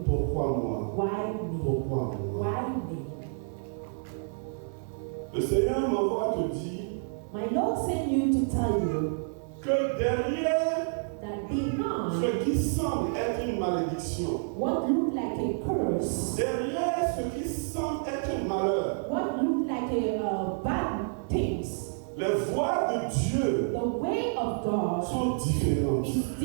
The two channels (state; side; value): silent; left; 55 dB below the other